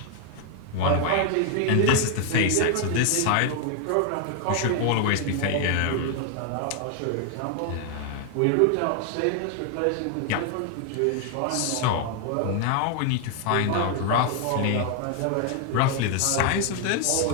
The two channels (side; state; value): both; different; correlation 0.00